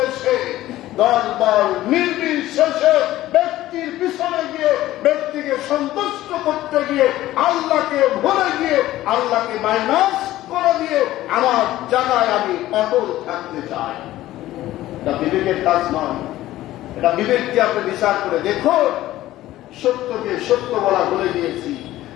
এসে দল বল নির্বিশেষে ব্যক্তির পিছনে গিয়ে, ব্যক্তিকে সন্তুষ্ট করতে গিয়ে, আল্লাহকে ভুলে গিয়ে, আল্লাহকে মাইনাস করে দিয়ে আমার জায়গায় আমি অটল থাকতে চাই। এটা বিবেকের কাজ নয়। এটা বিবেক দিয়ে আপনি বিচার করে দেখুন। সত্যকে সত্য বলা ভুলে গিয়েছি,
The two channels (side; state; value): right; quieter; 15.2 dB